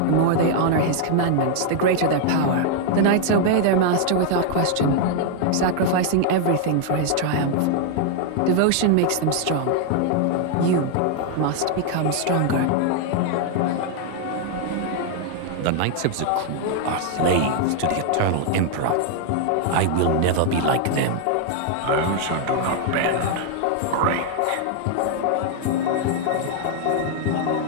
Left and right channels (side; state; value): both; different; correlation 0.00